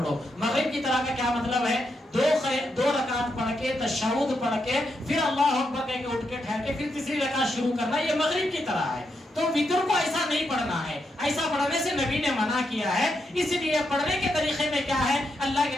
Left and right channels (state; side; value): normal; both; correlation 0.82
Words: مغرب کی طرح کا کیا مطلب ہے؟ 2 رکعت پڑھ کے تشہد پڑھ کے پھر اللہ اکبر کہہ کے اٹھ کے ٹھہر کے پھر تیسری رکعت شروع کرنا, یہ مغرب کی طرح ہے. تو وتر کو ایسا نہیں پڑھنا ہے, ایسا پڑھنے سے نبی نے منع کیا ہے. اس لیے پڑھنے کے طریقے میں کیا ہے, اللہ